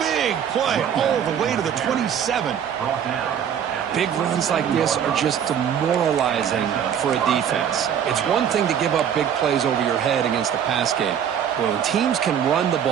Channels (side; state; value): left; quieter; 8.7 dB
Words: big play all the way to the 27. Big runs like this are just demoralizing for a defense. It's one thing to give up big plays over your head against the pass game. But when teams can run the